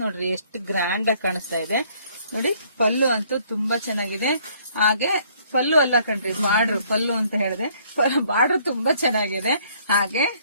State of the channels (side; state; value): both; inverted; correlation -0.62